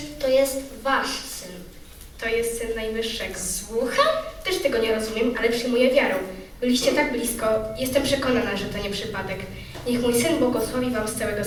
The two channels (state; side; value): identical; both; correlation 1.00